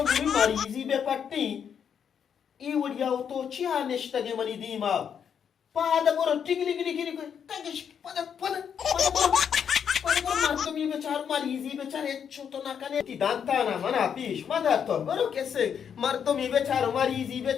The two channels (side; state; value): right; quieter; 7.8 dB